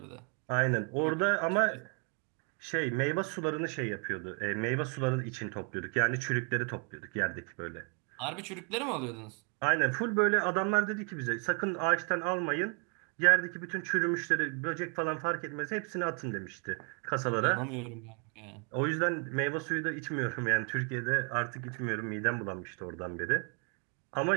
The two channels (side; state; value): left; quieter; 38.5 dB